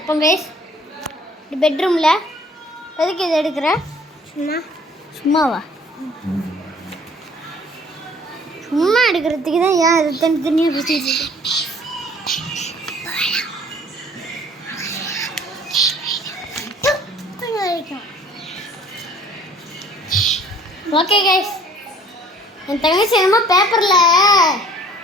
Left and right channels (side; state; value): both; normal; correlation 0.54